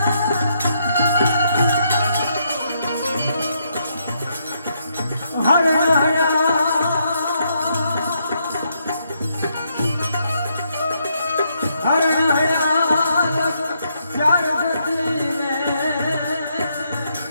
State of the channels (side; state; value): both; inverted; correlation -0.76